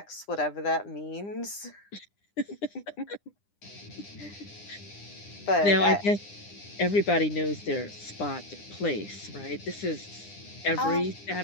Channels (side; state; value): right; late; 9.9 ms